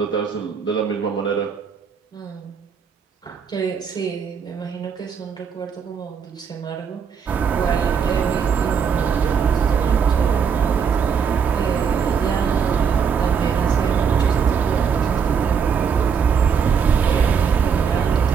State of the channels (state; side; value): quieter; left; 6.6 dB